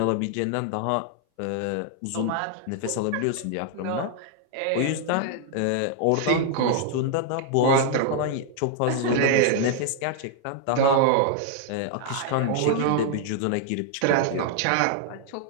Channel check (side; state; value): both; different; correlation 0.00